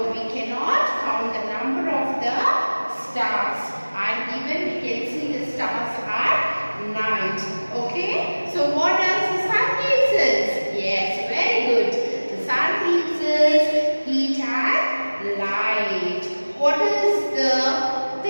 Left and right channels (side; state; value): both; inverted; correlation -1.00